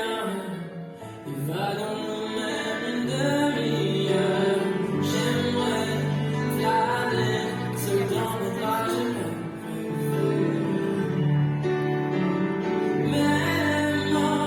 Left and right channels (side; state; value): both; identical; correlation 1.00